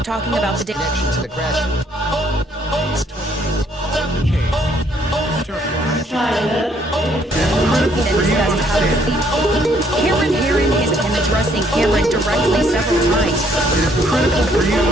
talking about the connection to the crash. Cameron Herrin has been addressing Cameron directly several times. It is critical for you to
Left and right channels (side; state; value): both; normal; correlation 0.66